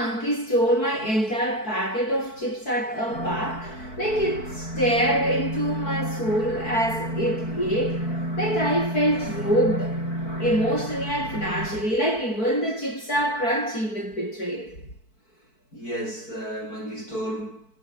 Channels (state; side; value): late; right; 4.5 ms